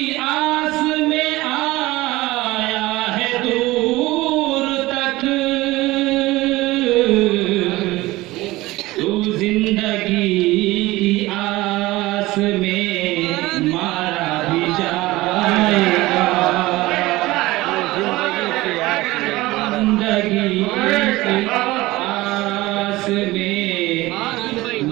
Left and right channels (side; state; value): left; quieter; 19.1 dB